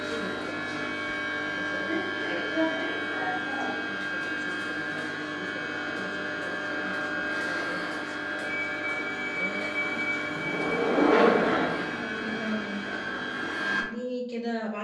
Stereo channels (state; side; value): identical; both; correlation 1.00